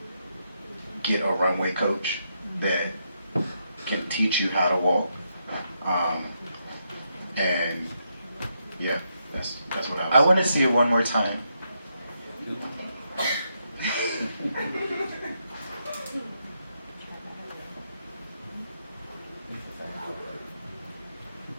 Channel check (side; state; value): both; inverted; correlation -0.80